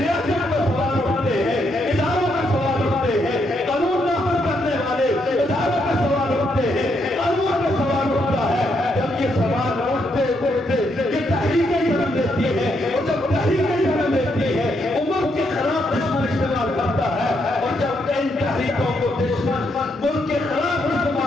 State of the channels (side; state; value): both; normal; correlation 0.77